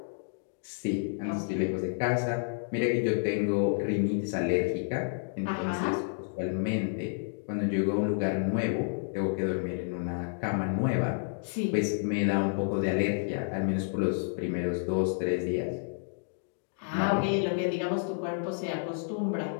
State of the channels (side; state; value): right; silent; digital silence